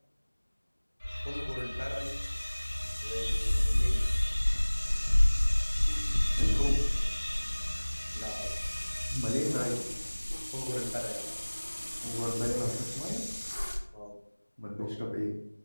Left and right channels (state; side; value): inverted; both; correlation -1.00